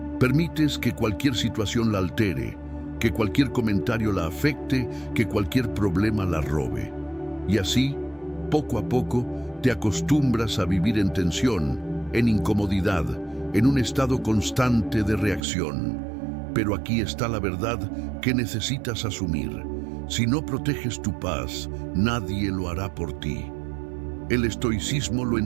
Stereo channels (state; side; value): drops out; left; at 15.4 s